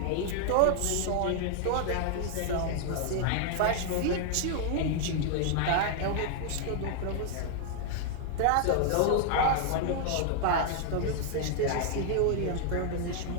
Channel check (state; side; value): different; both; correlation 0.00